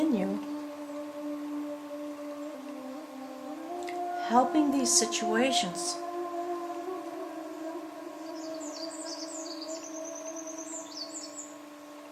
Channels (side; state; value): both; identical; correlation 1.00